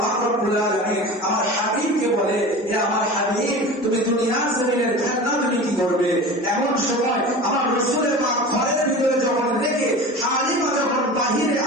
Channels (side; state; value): both; normal; correlation 0.34